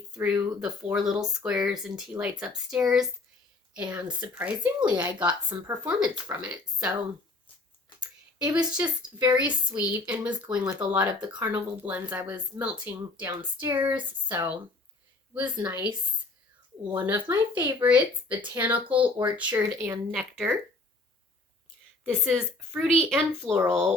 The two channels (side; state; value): right; quieter; 3.3 dB